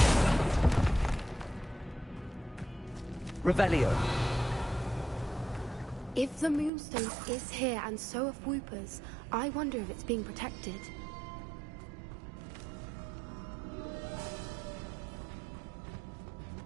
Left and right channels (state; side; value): drops out; left; at 6.7 s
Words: Revelio. If the Moonstone is here and so are Whoopers, I wonder if it's being protected.